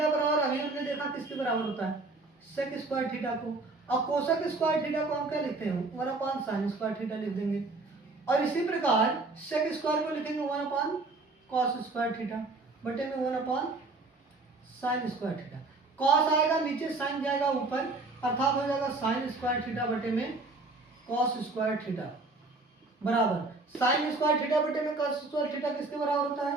बराबर, अभी हमने देखा किसके बराबर होता है, सेक स्क्वायर थीटा को। और कोसेक स्क्वायर थीटा को हम क्या लिखते हैं, 1 अपॉन साइन स्क्वायर थीटा लिख देंगे। और इसी प्रकार सेक स्क्वायर को लिखेंगे 1 अपॉन कॉस स्क्वायर थीटा बटे में 1 upon sine square theta. Cos आएगा नीचे, साइन जाएगा ऊपर, अर्थात हो जाएगा साइन स्क्वायर थीटा बटे में कॉस स्क्वायर थीटा बराबर साइन स्क्वायर थीटा बटे में कॉस स्क्वायर थीटा किसके बराबर होता है,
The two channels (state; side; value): quieter; left; 3.4 dB